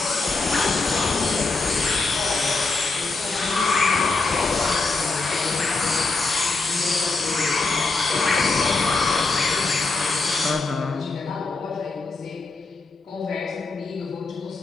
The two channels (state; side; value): quieter; right; 3.7 dB